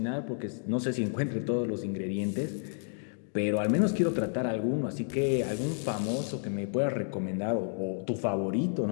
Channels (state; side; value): silent; right; digital silence